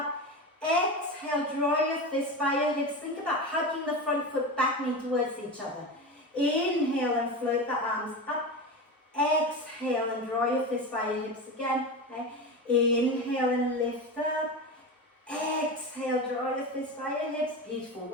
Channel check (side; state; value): both; normal; correlation 0.24